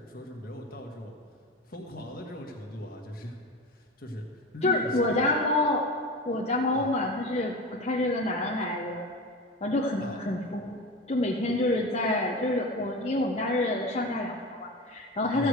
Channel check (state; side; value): normal; both; correlation 0.29